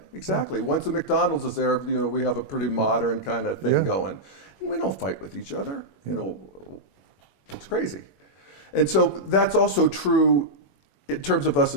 exactly. Yeah. Once a McDonald's is there, we have a pretty modern kind of thing going. And we don't fight with each other. It's crazy. And so that's also true in terms of us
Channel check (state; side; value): late; right; 21 ms